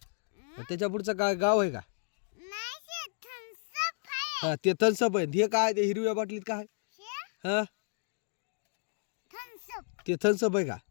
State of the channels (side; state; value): right; silent; 56 dB below the other